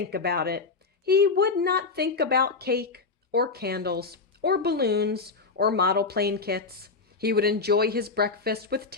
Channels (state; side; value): quieter; right; 4.3 dB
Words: about it. He would not think about cake or candles or balloons or model plane kits. He would enjoy his breakfast with